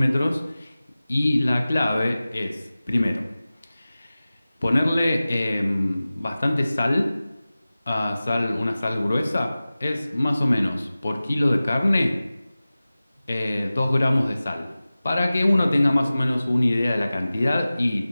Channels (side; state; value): both; inverted; correlation -0.97